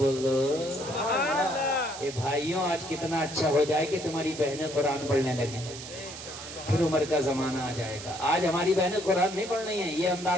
دو سبحان اللہ. اے بھائیوں، آج کتنا اچھا ہو جائے کہ تمہاری بہنیں قرآن پڑھنے لگیں، پھر عمر کا زمانہ آ جائے گا. آج ہماری بہنیں قرآن نہیں پڑھ رہی ہیں، یہ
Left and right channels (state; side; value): noise; right; hiss, 12 dB below the sound